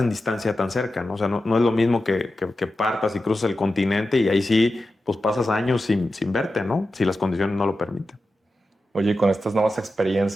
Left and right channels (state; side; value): normal; both; correlation 0.92